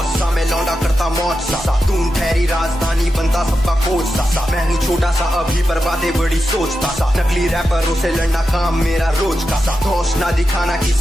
सा मैं लौंडा करता मौज सा, तून ठहरी राजधानी बनता सबका कोच सा। मैं हूँ छोटा सा अभी पर बातें बड़ी सोचता सा, नकली रैपरों से लड़ना काम मेरा रोज का सा। होश ना दिखाना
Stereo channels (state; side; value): normal; both; correlation 0.89